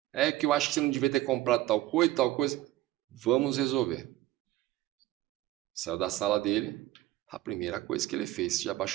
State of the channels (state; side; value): quieter; left; 15.9 dB